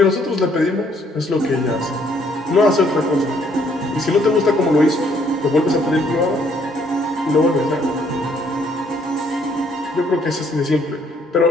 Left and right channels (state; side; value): normal; both; correlation 0.66